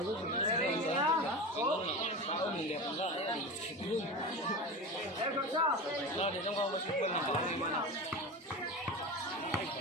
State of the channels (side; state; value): both; normal; correlation 0.26